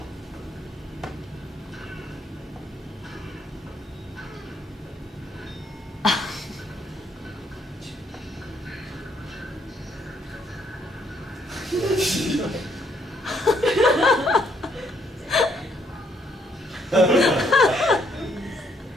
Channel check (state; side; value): normal; both; correlation 0.70